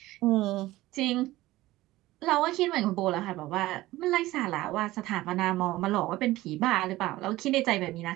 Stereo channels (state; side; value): quieter; left; 17.3 dB